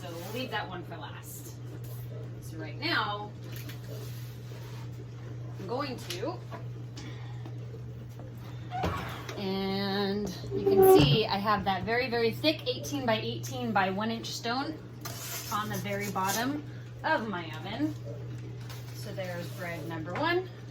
we'll leave that one for last. So right now, I'm going to, and you can see I have that very, very thick 18 by 18 by 1 inch stone on the very bottom of my oven. So there's bread number 1.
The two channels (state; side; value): identical; both; correlation 1.00